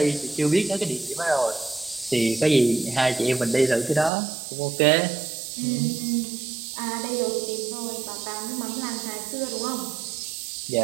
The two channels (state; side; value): drops out; left; at 4.1 s